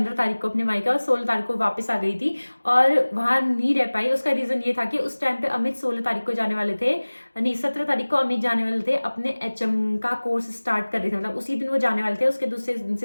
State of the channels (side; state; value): both; inverted; correlation -1.00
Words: तारीख को अपने मायके और 16 तारीख को वापस आ गई थी और वहाँ नहीं रह पाई। उसका रीज़न ये था कि उस टाइम पे अमित 16 तारीख को जाने वाले थे, नहीं 17 तारीख को अमित जाने वाले थे, अपने HM का कोर्स स्टार्ट कर रहे थे, मतलब उसी दिन वो जाने वाले थे, उसके दूसरे दिन